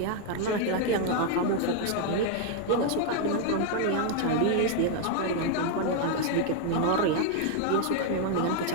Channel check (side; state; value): both; different; correlation 0.00